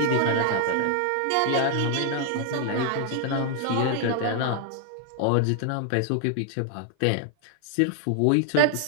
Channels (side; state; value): both; different; correlation 0.00